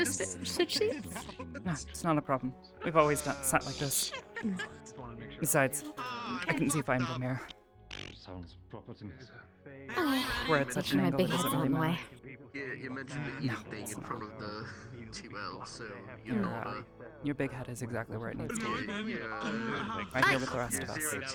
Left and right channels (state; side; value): identical; both; correlation 1.00